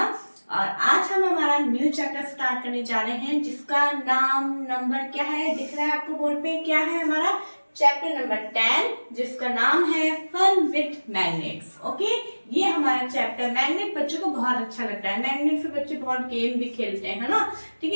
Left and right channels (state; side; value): inverted; both; correlation -1.00